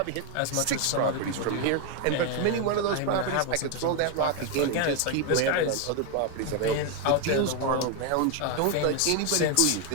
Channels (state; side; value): different; both; correlation 0.01